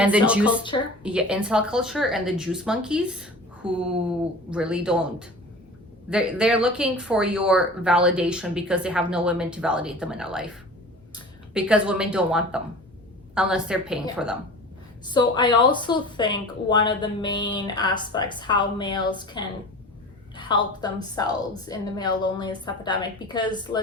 the juice culture. Incel culture and the juice monkeys who really don't. They're looking for your validation because they have no women to validate them in their life. Because women don't want them unless they're paying for them. So I also think one of the main aspects how males can help themselves in the male loneliness epidemic, because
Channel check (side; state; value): both; normal; correlation 0.38